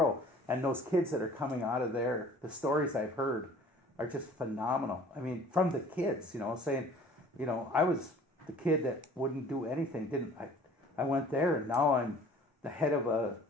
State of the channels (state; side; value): normal; both; correlation 0.50